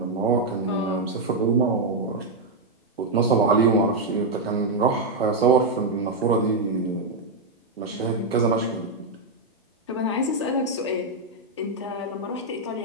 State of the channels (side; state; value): left; quieter; 3.0 dB